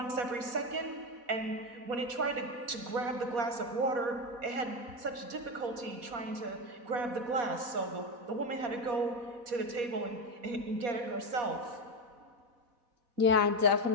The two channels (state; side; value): late; left; 4.2 ms